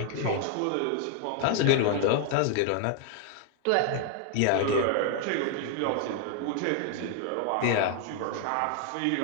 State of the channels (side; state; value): both; different; correlation 0.00